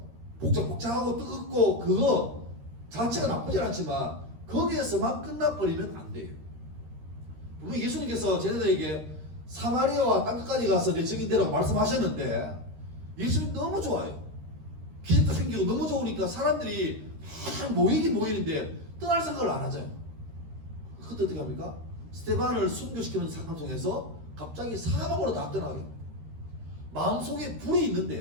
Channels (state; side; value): late; left; 13 ms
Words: 복잡복잡하고 뜨겁고 그거 자체가 나쁘진 않지만 거기에서만 끝나버리면 안 돼요. 분명히 예수님께서 제자들에게 사마리아와 땅끝까지 가서 내 증인되라고 말씀하셨는데 예수님 너무 좋아요. 기적도 생기고 너무 좋으니까 사람들이 모이긴 모이는데 떠날 생각을 안 하잖아요. 그때 어떻게 합니까? 스데반을 순교시키는 사건을 통해서 갑자기 사방으로 다 떠나게 합니다. 마음속에 불이